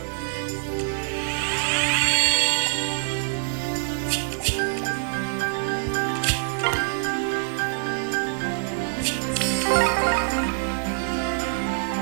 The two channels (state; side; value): silent; left; digital silence